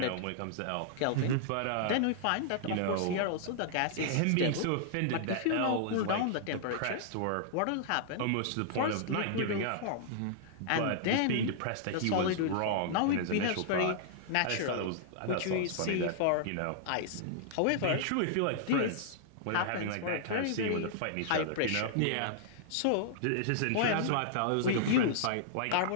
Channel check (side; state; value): both; different; correlation -0.01